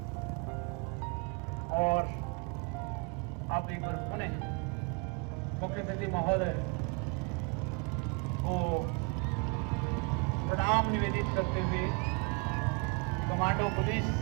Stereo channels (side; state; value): left; quieter; 32.8 dB